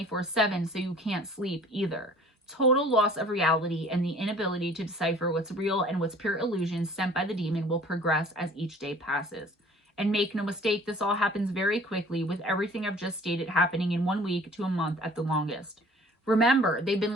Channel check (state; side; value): normal; both; correlation 0.50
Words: so you can't sleep either. Total loss of reality and the inability to decipher what's real and what's pure illusion sent by the demon will progress as each day passes. And make no mistake, this all happens very quickly, with everything I've just stated happening in 1 week to a month at the longest. Remember, they've been